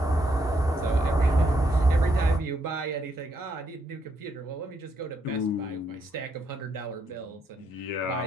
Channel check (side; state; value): both; normal; correlation 0.76